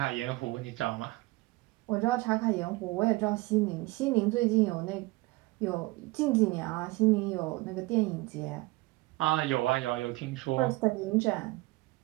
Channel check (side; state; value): left; quieter; 21.6 dB